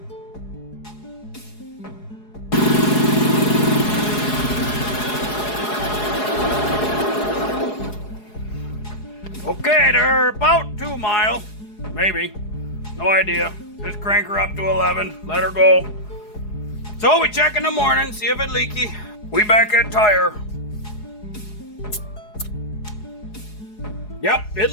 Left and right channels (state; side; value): late; right; 4.8 ms